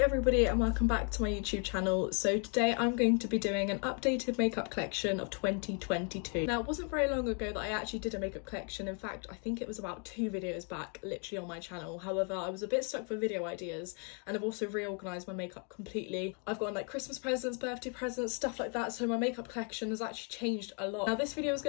everybody and welcome back to my YouTube channel. So today I'm going to be doing an updated makeup collection of 2022. Now it wasn't very long ago that I actually did a makeup collection. In fact, I think it was about 2 videos back literally on my channel. However, I was a bit stuck for video ideas and I've also reorganised my makeup completely. I've gotten like Christmas presents, birthday presents, stuff like that, so my makeup collection has actually changed a lot. Now this video is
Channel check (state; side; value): quieter; right; 39.3 dB